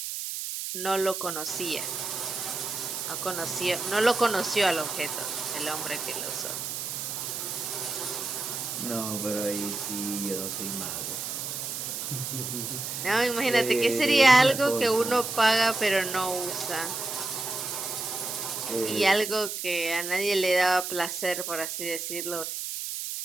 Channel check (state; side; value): noise; right; hiss, 4 dB below the sound